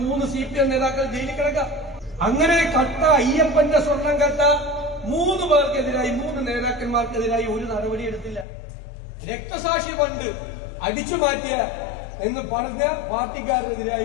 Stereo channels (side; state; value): right; drops out; at 8.5 s